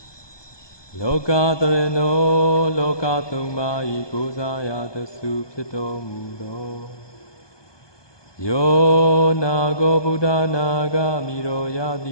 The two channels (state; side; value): late; right; 1.2 ms